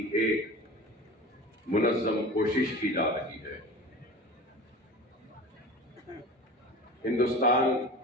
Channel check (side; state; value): both; normal; correlation 0.35